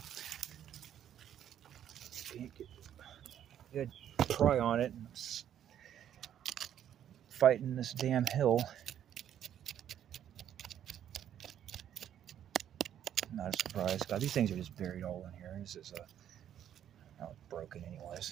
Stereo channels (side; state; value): left; quieter; 10.2 dB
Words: Can't get good pry on it. Fighting this damn hill. Not a surprise. God, these things are just buried all in here. This is oh, it's broken